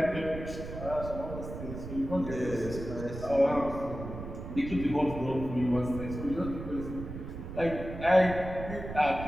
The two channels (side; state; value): right; noise; rumble, 9 dB below the sound